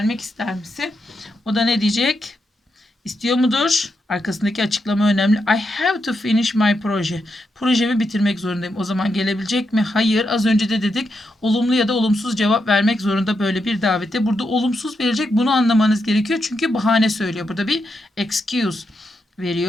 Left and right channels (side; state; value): both; normal; correlation 0.84